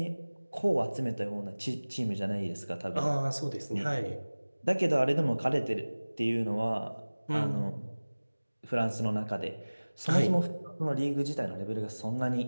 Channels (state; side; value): inverted; both; correlation -1.00